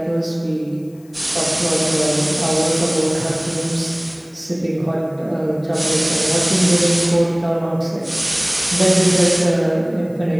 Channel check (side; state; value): left; noise; hiss, 30 dB below the sound